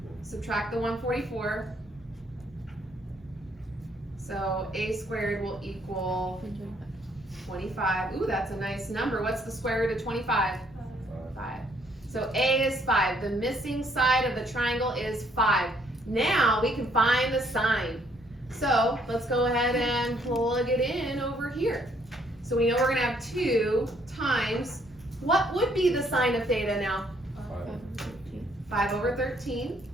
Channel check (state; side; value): normal; both; correlation 0.67